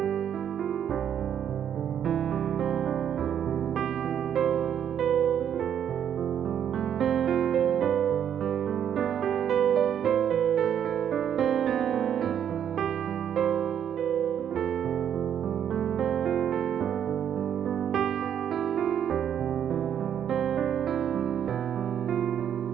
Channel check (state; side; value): quieter; left; 9.2 dB